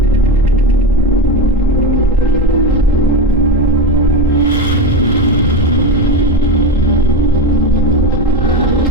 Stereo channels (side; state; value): both; normal; correlation 0.18